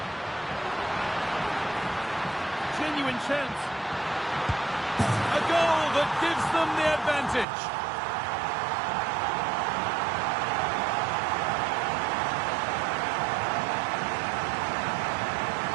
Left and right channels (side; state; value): left; drops out; at 7.5 s